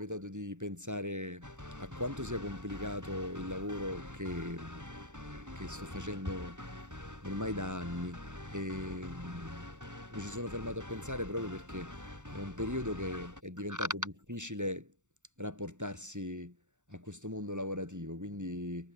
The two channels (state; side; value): late; left; 0.85 ms